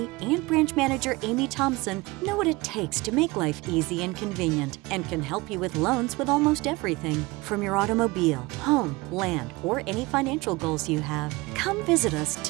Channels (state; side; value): quieter; left; 22.8 dB